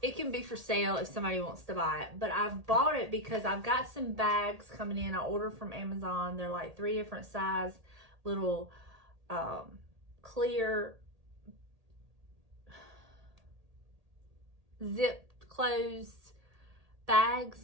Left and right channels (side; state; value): left; late; 1.8 ms